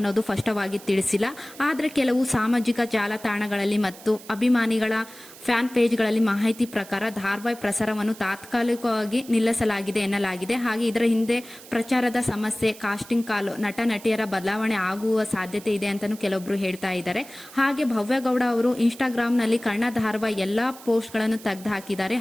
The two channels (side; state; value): right; noise; hiss, 18 dB below the sound